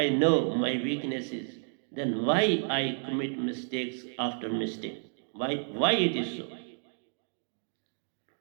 know my weaknesses, then why I commit mistakes after mistake? Why it is so?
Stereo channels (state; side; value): silent; left; 57 dB below the other